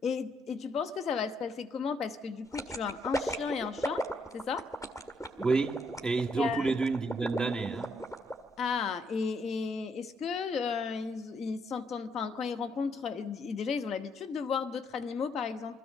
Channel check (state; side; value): normal; both; correlation 0.73